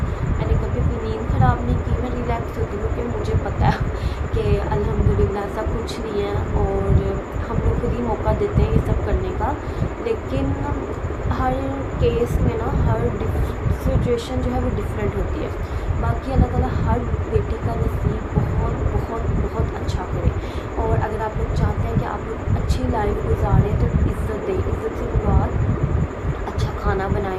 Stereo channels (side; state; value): both; identical; correlation 1.00